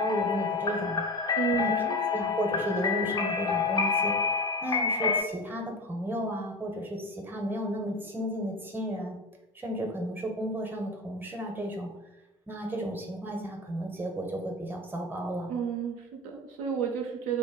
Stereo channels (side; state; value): both; normal; correlation 0.27